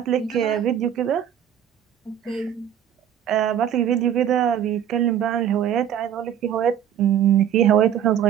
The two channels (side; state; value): left; quieter; 9.8 dB